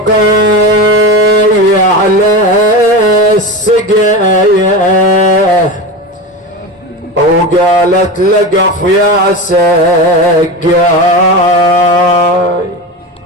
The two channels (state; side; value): normal; both; correlation 0.24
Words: على السقاية وقالت لقف يا سقاي.